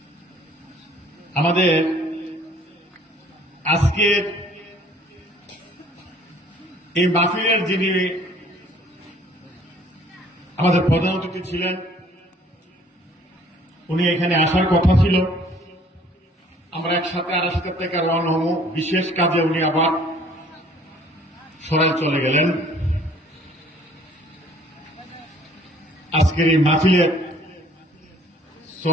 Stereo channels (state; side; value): normal; both; correlation 0.56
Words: আমাদের আজকের এই মাহফিলের যিনি আমাদের প্রধান অতিথি ছিলেন, উনি এখানে আসার কথা ছিল। আমরা একসাথে আরাস্তা থেকে রওনা হব, বিশেষ কাজে উনি আবার সরাই চলে গেলেন। আজকের এই মাহফিলের